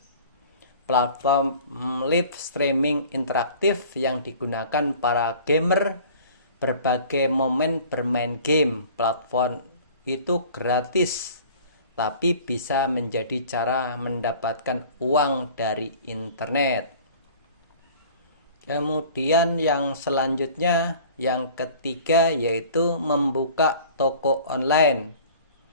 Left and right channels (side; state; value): both; inverted; correlation -0.47